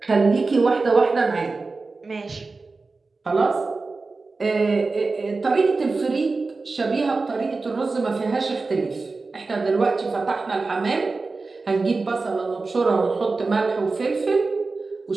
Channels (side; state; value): left; quieter; 3.8 dB